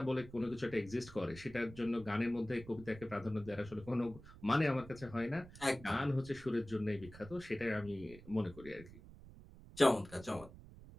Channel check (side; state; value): right; noise; rumble, 17 dB below the sound